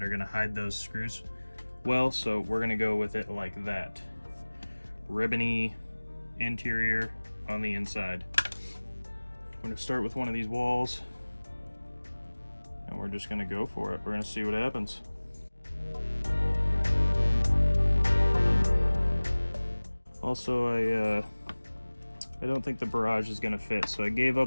are gonna hide those screws well, so we're gonna go with it like that. ribbony interior on the inside. I'm going to start with one of these walls, and we're just going to go for it. We're going to see what happens. Also, I don't think the barrage is going to fit, so I gave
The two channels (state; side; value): inverted; both; correlation -1.00